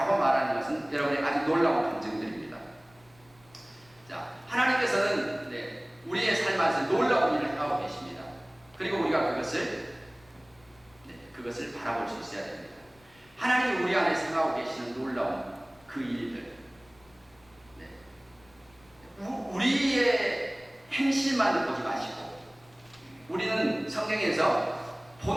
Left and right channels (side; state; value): left; noise; rumble, 29 dB below the sound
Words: 말하는 것은 여러분의 아주 놀라운 감정들입니다. 자, 하나님께서는 우리의 삶 안에서 놀라운 일을 하고 계십니다. 그리고 우리가 그것을 바라볼 수 있어야 됩니다. 하나님이 우리 안에 생각하고 계시는 놀라운 그 일들, 우리의 행실만 보지 마시고, 우리는 성경에서